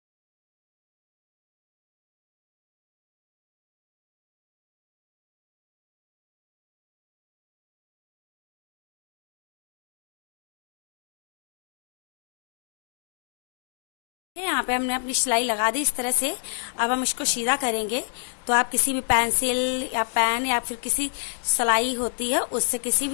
यहाँ पे हमने अपनी सिलाई लगा दी इस तरह से। अब हम इसको सीधा करेंगे। तो आप किसी भी पेंसिल या पेन या फिर किसी सिलाई होती है उससे, किसी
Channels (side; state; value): right; silent; digital silence